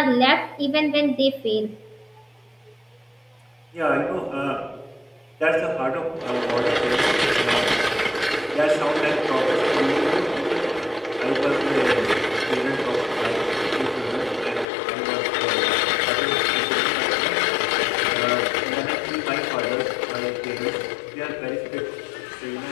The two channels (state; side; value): drops out; right; at 14.7 s